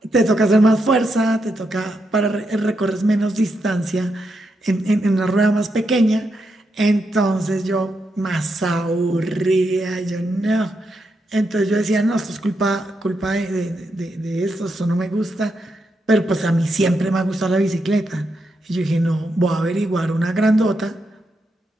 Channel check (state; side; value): normal; both; correlation 0.83